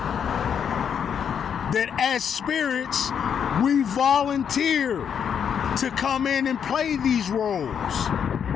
that as spirits, we volunteer to come in and play these roles.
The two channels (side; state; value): right; quieter; 7.8 dB